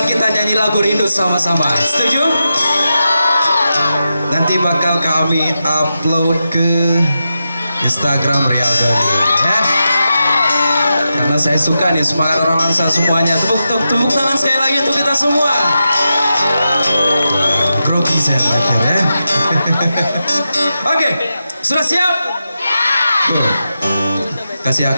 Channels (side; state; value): both; inverted; correlation -0.89